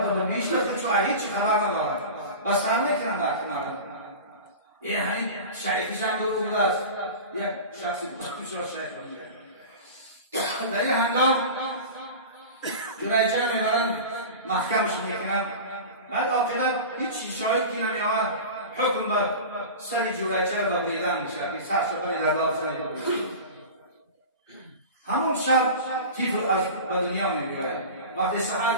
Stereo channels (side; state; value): both; inverted; correlation -0.32